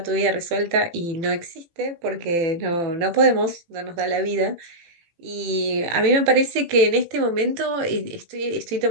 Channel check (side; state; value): left; late; 18 ms